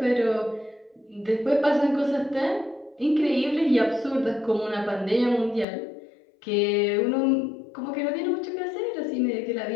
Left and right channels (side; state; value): right; drops out; at 5.7 s